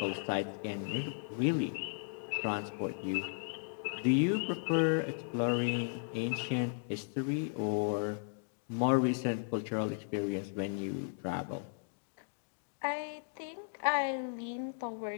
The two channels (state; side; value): silent; right; digital silence